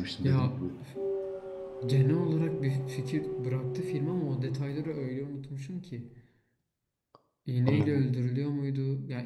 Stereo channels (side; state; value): both; identical; correlation 1.00